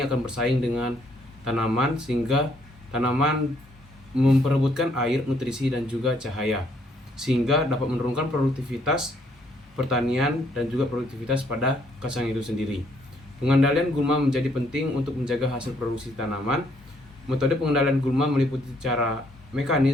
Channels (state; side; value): normal; both; correlation 0.68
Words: akan bersaing dengan tanaman sehingga tanaman memperebutkan air, nutrisi, dan juga cahaya, sehingga dapat menurunkan produktivitas pertanian dan juga produktivitas pada kacang itu sendiri. Pengendalian gulma menjadi penting untuk menjaga hasil produksi tanaman. Metode pengendalian gulma meliputi cara